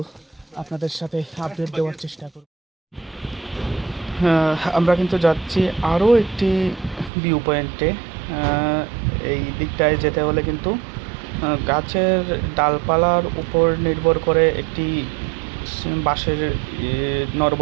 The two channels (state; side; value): drops out; left; at 7.1 s